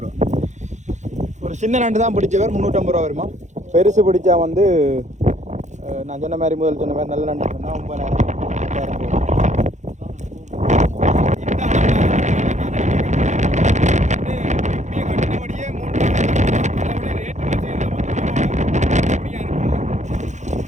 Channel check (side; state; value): left; late; 0.34 ms